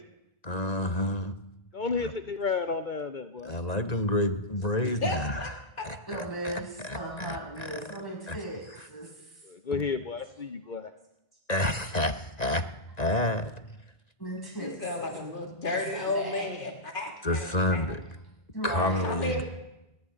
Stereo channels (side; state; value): right; late; 1.9 ms